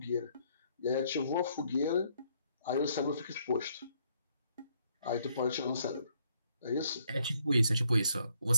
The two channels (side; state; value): both; inverted; correlation -0.70